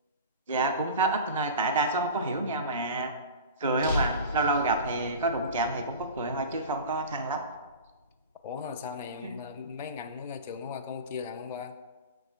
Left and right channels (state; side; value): inverted; both; correlation -0.33